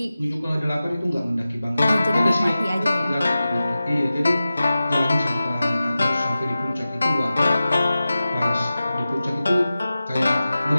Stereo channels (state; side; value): inverted; both; correlation -0.95